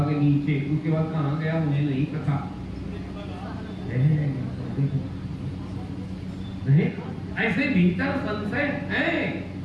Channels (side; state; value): both; identical; correlation 1.00